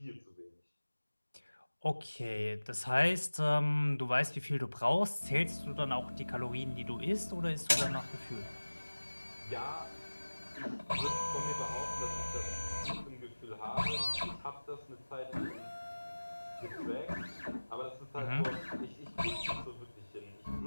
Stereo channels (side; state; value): both; inverted; correlation -1.00